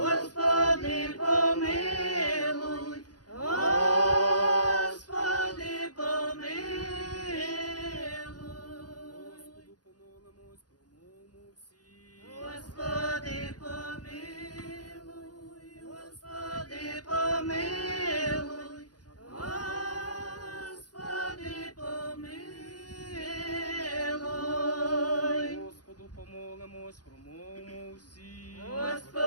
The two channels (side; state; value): right; late; 0.69 ms